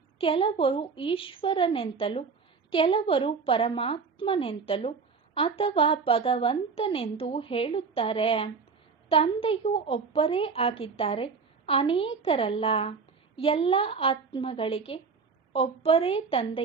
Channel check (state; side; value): quieter; left; 5.2 dB